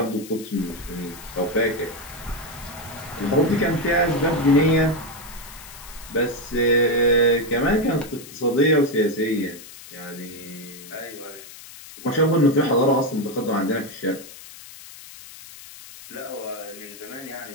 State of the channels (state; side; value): noise; left; hiss, 16 dB below the sound